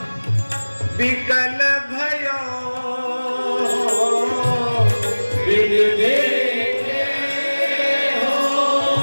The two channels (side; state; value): both; inverted; correlation -1.00